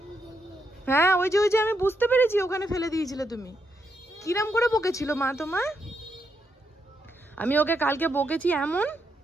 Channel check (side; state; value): both; normal; correlation 0.80